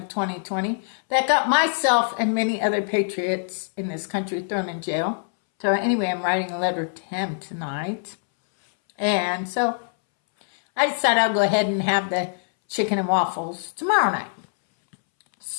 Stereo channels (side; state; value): right; silent; 63 dB below the other